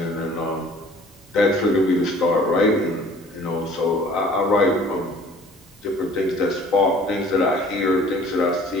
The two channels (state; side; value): normal; both; correlation 0.51